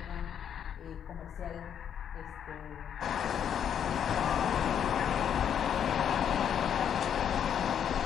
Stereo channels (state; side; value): quieter; right; 8.8 dB